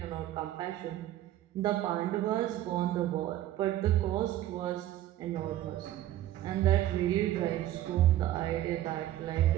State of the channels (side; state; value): left; quieter; 13.5 dB